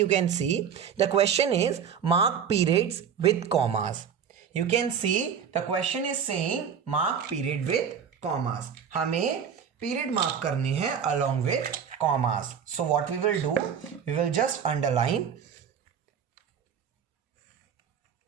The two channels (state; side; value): quieter; left; 7.6 dB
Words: can see the question is mark periods with commas. You can see the question is saying mark period with commas. हमें पीरियड मार्क करने हैं along with commas. So what we will do, we will just underline